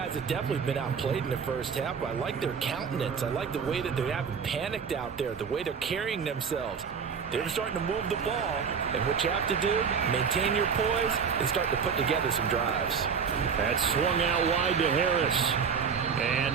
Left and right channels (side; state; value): left; quieter; 6.3 dB